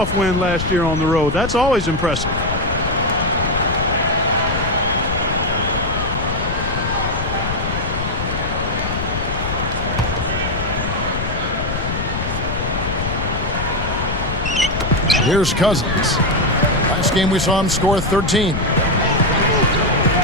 win last year on the road. That's always impressive. Here's Cousins. Last game we saw him score 13.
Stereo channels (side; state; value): left; noise; rumble, 4 dB below the sound